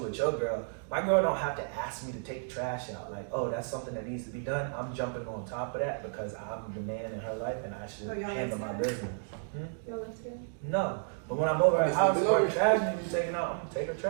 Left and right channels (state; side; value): silent; left; digital silence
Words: with your girl. My girl don't have to ask me to take the trash out. Like, oh, that's something that needs to be done. I'm jumping on top of that because I'm the man in her life and I should Oh, y'all handle live my together? business. Y'all live together? No, But when I'm over at her It's house, been if her over. trash needs taking out, I'm gonna take her